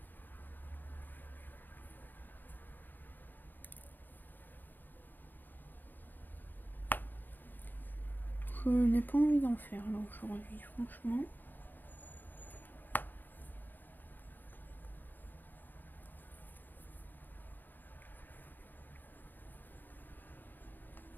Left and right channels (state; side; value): late; right; 0.090 ms